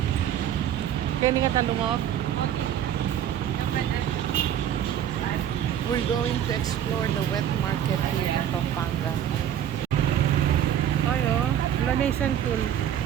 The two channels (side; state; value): left; quieter; 10.1 dB